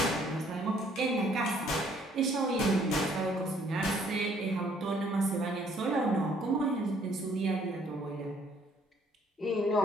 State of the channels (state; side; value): normal; both; correlation 0.63